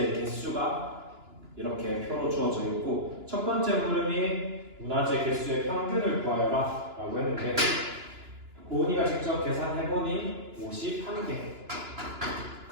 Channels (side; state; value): left; late; 2.9 ms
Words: 개수가 이렇게 표로 주어져 있고 첫 번째 물음이 문화재 개수의 평균을 구하여라 라고 했는데 고은이가 직접 계산해보니 51개가